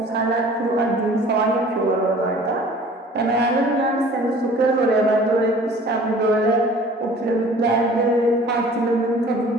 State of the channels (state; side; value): normal; both; correlation 0.48